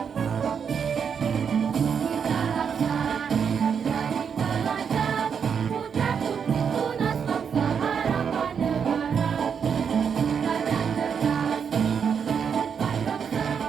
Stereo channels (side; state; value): left; quieter; 6.9 dB